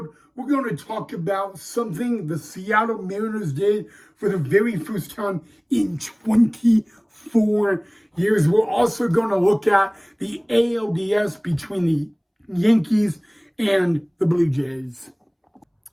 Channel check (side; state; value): both; identical; correlation 1.00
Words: we're going to talk about something the Seattle Mariners did for the very first time in 24 years. We're also going to look at the ALDS between the Yankees and the Blue Jays.